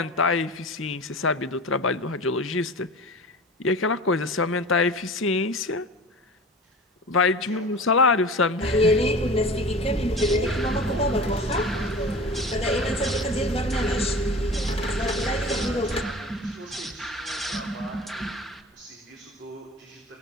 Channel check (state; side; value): normal; both; correlation 0.36